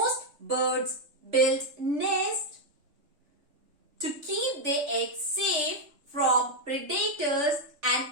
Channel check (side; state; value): left; late; 3.4 ms